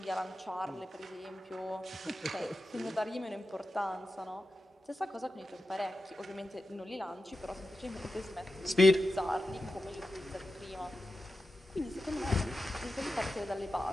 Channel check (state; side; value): normal; both; correlation 0.91